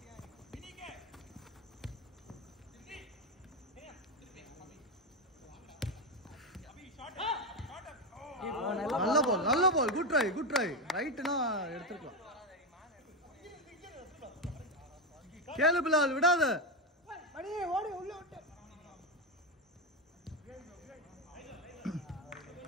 நல்ல பால் குட் ட்ரை ரைட்னா எடுத்துக்கலாம். கேளு பிலால் விடாத. ஓடி உள்ள விட்டு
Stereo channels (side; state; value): both; normal; correlation 0.11